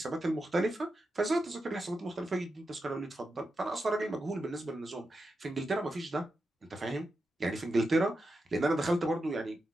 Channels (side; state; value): both; normal; correlation 0.88